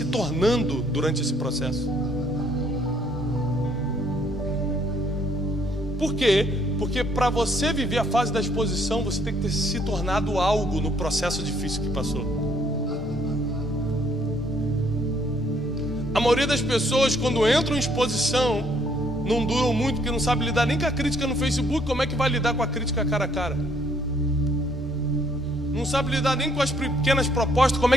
tornando durante esse processo. Por quê? Porque para você viver a fase da exposição, você tem que ter se tornado algo no processo difícil que passou. A maioria das pessoas, quando entram em exposição, não duram muito, porque não sabe lidar nem com a crítica no Facebook. Como é que vai lidar com a crítica cara a cara? Não sabe lidar nem com as pequenas propostas. Como é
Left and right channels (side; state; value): both; normal; correlation 0.66